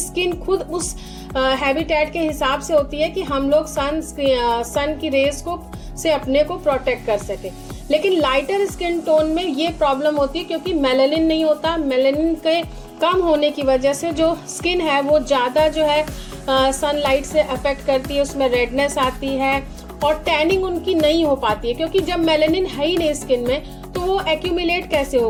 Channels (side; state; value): both; identical; correlation 1.00